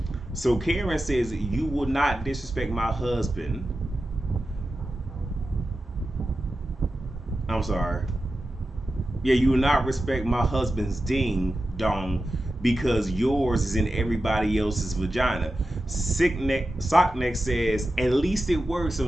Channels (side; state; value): both; normal; correlation 0.92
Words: So Karen says, you will not disrespect my husband. I'm sorry. Yeah, you will not respect my husband's ding dong because yours is in everybody else's vagina. Sockneck says, at least it works. So